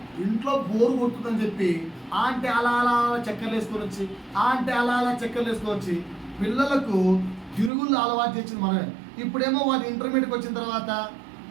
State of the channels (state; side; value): drops out; left; at 7.7 s